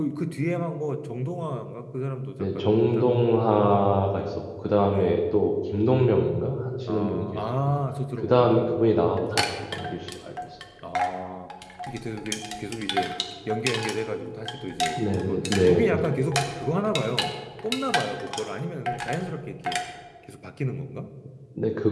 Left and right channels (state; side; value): identical; both; correlation 1.00